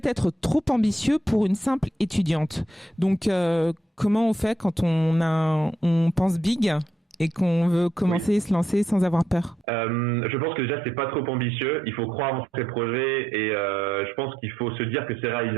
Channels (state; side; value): normal; both; correlation 0.78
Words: trop ambitieux pour une simple étudiante. » Donc, comment on fait quand on pense big et qu'on veut commencer et se lancer sans avoir peur? Je pense que déjà, c'est pas trop ambitieux. Il faut croire en ses projets et je pense qu'il faut se dire que c'est